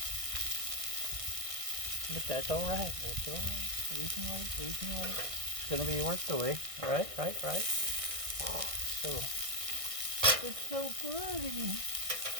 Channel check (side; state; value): left; late; 1.6 ms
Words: But that's all right. That's all right. We can wait. It's going to be worth the wait. Right. So, it's so pretty.